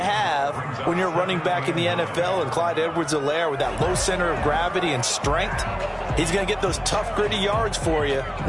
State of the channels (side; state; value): both; identical; correlation 1.00